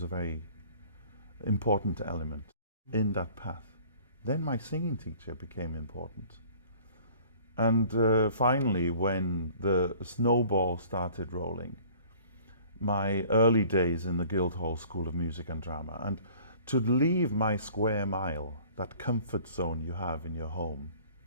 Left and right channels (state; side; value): inverted; both; correlation -0.51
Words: a very important element in that path. Then my singing teacher became important. And finally, when the snowball started rolling, my early days in the Guildhall School of Music and Drama, and to leave my square mile, that comfort zone you have in your home,